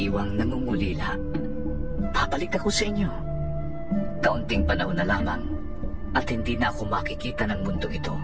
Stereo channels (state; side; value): identical; both; correlation 1.00